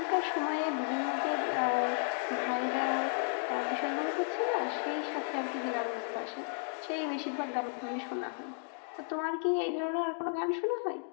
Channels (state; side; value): silent; right; 55 dB below the other